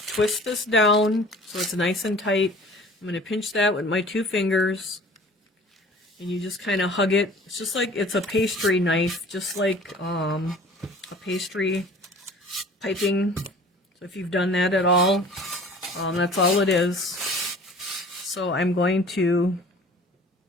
this down so it's nice and tight. I'm going to pinch that with my 2 fingers. And you just kind of hug it. It's just like it's a pastry knife, just like a pastry piping. So if you've done that at all, that's all it is. So I'm going to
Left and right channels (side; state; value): both; normal; correlation 0.46